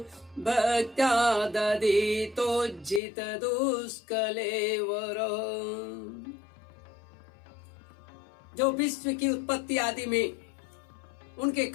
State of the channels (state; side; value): drops out; right; at 3.0 s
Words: भक्त्या दधितोज्झितदुष्कलेवरो। जो विश्व की उत्पत्ति आदि में उनके